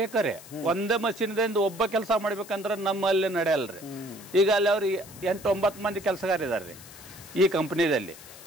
ಒಂದೇ ಮಷೀನ್ದಿಂದ ಒಬ್ಬ ಕೆಲಸ ಮಾಡ್ಬೇಕಂದ್ರೆ ನಮ್ಮಲ್ಲಿ ನಡೆಯಲ್ರಿ ಈಗ ಅಲ್ಲಿ ಅವ್ರಿಗೆ 8-9 ಮಂದಿ ಕೆಲಸಗಾರ ಇದಾರ್ರಿ ಈ ಕಂಪನಿದಲ್ಲಿ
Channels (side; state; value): left; noise; hiss, 18 dB below the sound